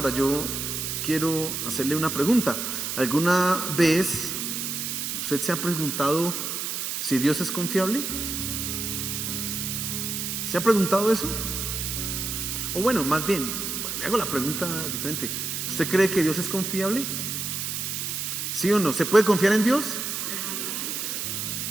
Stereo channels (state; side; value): noise; right; hiss, 3 dB below the sound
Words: yo quiero hacerle una pregunta. ¿Alguna vez usted se ha preguntado si Dios es confiable? ¿Se ha preguntado eso? O bueno, más bien, le hago la pregunta diferente. ¿Usted cree que Dios es confiable? ¿Sí o no? ¿Se puede confiar en Dios?